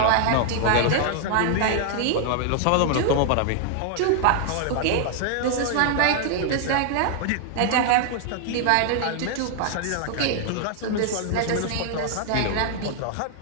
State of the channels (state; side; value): different; both; correlation 0.00